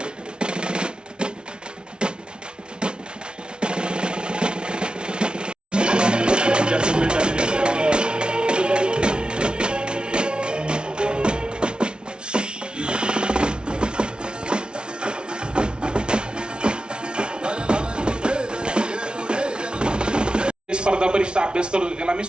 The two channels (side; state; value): left; late; 0.056 ms